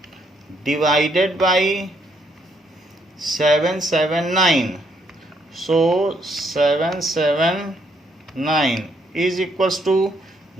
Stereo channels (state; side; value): normal; both; correlation 0.72